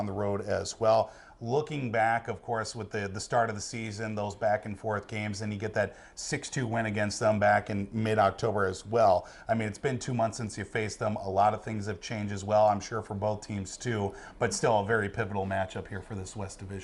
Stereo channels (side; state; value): both; identical; correlation 1.00